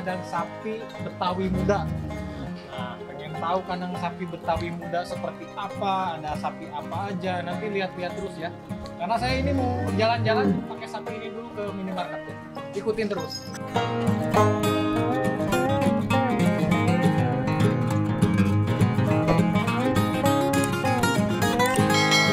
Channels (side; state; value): both; identical; correlation 1.00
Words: sapi Betawi Muda. Nah, pengen tahu kandang sapi Betawi Muda seperti apa, ada sapi apa aja, nanti lihat-lihat terus ya. Karena saya ini mau jalan-jalan pakai sapi ini dulu ke minimarket ya. Ikutin terus.